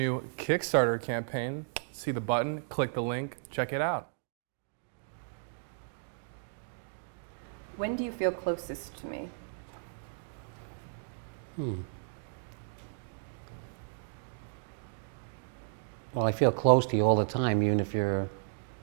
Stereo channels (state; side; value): silent; left; digital silence